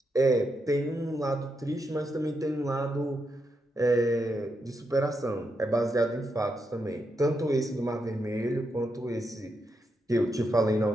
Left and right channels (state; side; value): normal; both; correlation 0.83